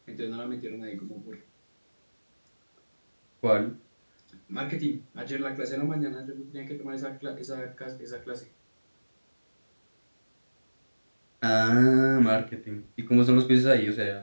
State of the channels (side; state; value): both; inverted; correlation -1.00